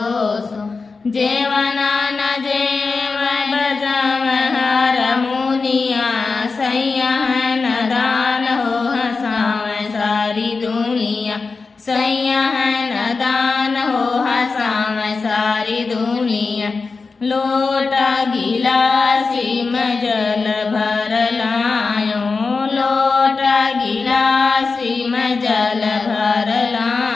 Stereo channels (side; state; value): right; quieter; 4.3 dB